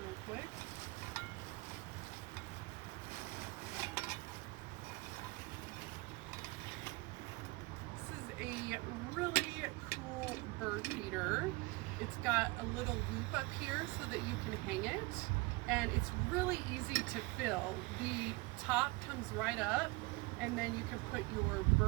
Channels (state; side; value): quieter; left; 24.2 dB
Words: quick. A really cool bird feeder. It's got a little loop up here so that you can hang it, and it's really easy to fill. The top comes right up, and then you can put your